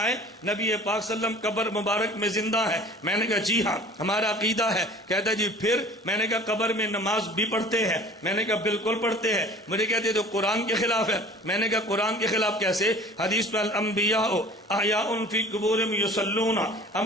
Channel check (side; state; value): both; normal; correlation 0.45